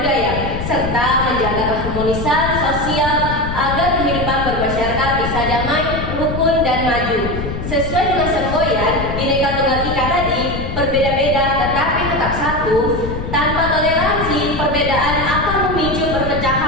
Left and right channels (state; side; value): noise; left; rumble, 5 dB below the sound